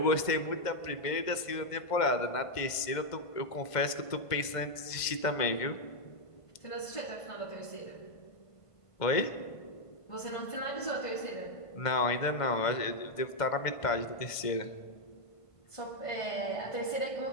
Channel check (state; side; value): late; right; 1.5 ms